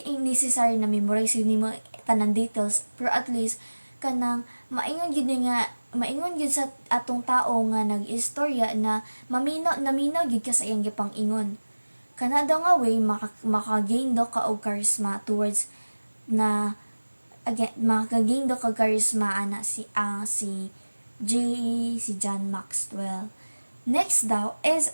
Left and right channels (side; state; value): both; inverted; correlation -1.00